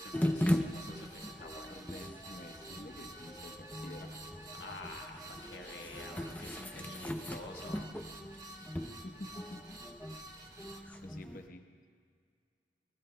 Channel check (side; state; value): both; normal; correlation 0.87